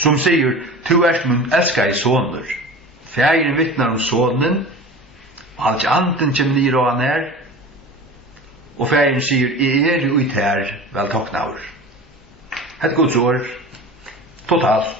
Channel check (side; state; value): both; normal; correlation 0.35